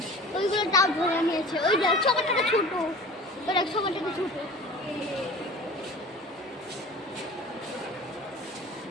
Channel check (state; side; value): normal; both; correlation 0.41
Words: ওইগুলো তাও ধরে নিয়েছে ওই দেখ সবারটাকে ছোট ওই দেখ সবারটাকে ছোট